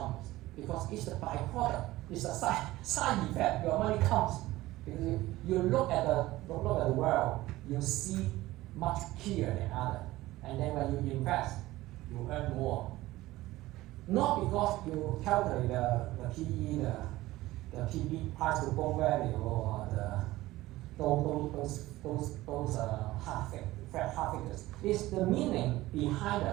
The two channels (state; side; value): quieter; left; 17.5 dB